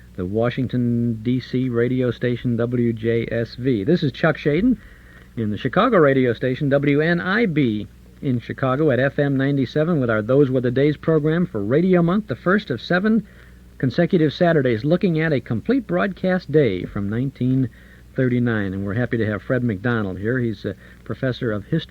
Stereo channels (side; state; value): both; identical; correlation 1.00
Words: the Washington, D.C. radio station WJSV. This is Chuck Shaden in the Chicago radio station WNIB in Chicago at FM 97 with our Those Were the Days program for Radio Month, the first of 7 consecutive Saturdays, looking at a complete broadcast day from 1939. And we're happy to have Fred McDonald here. He's a professor of